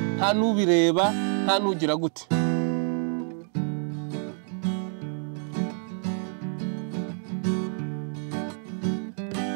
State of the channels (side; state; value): left; silent; 56 dB below the other